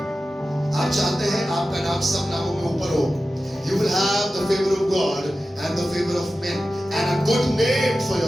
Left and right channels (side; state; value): both; normal; correlation 0.94